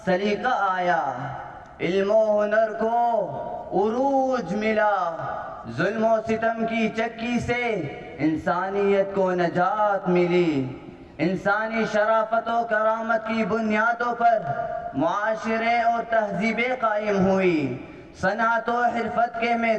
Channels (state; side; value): identical; both; correlation 1.00